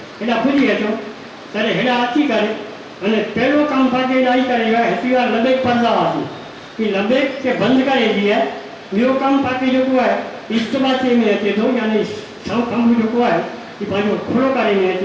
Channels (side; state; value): both; identical; correlation 1.00